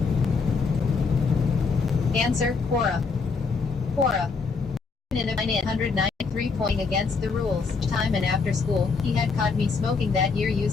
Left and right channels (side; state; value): right; quieter; 4.7 dB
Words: Answer. Quora. Quora. In a 993 point against the rules. Time and after school, he had caught me smoking that year